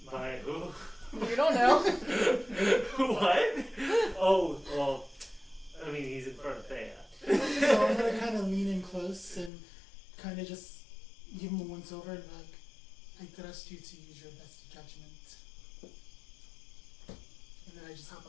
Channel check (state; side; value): drops out; right; at 9.5 s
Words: By who? You don't know. What? Oh, well, I mean, he's in front of Thea. So I'm gonna kind of lean in close and kind of just give him a once over and be like, I trust you to use your best judgment. And then I just hop